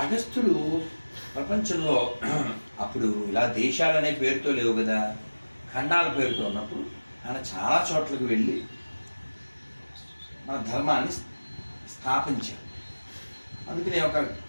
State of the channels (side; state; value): both; inverted; correlation -1.00